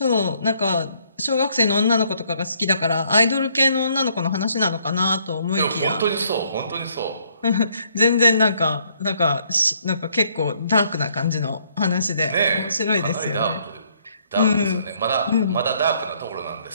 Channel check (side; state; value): both; inverted; correlation -0.68